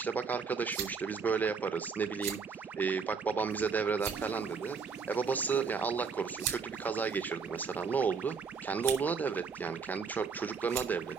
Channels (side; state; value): left; quieter; 5.5 dB